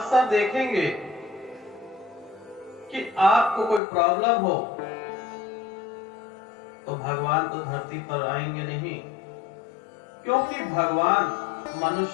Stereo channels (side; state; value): right; drops out; at 3.8 s